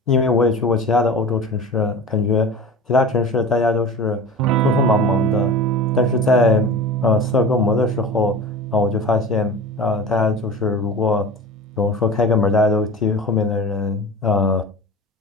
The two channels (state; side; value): normal; both; correlation 0.35